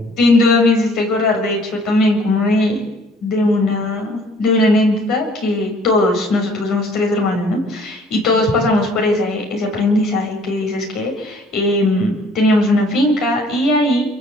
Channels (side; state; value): both; normal; correlation 0.57